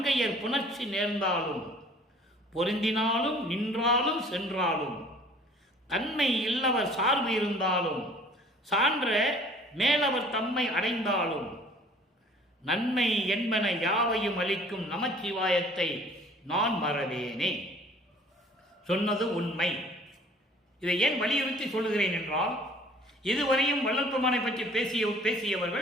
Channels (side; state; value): both; normal; correlation 0.52